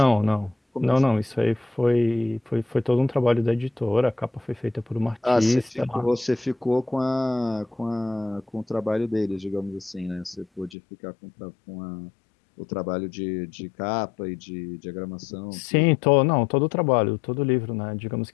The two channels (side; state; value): right; drops out; at 10.8 s